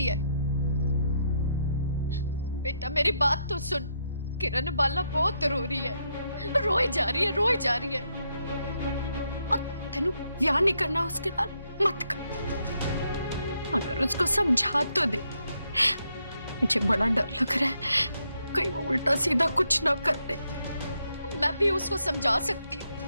है। बेटा मेरी बात तो सुन, किरण बाला बहुत रो रही है, रोई जा रही है, रोई जा रही है। और तेनू ब्याह नहीं करना उसके नाल मत कर। अगर उसको समझा तो दे। मुझे बड़ा डर लग रहा है कहीं वो उल्टा सीधा कुछ ना कर दे। मैं भी उसको समझा सकती हूँ,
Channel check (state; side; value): inverted; both; correlation -0.78